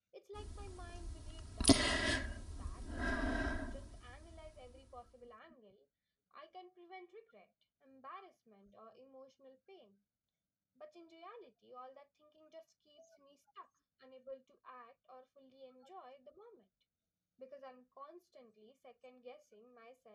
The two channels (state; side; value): identical; both; correlation 1.00